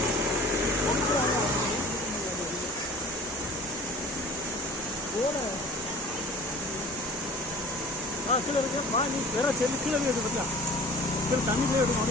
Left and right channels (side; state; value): both; normal; correlation 0.44